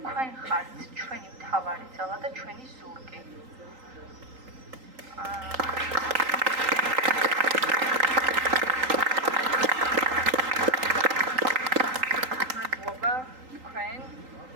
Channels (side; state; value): left; late; 3.8 ms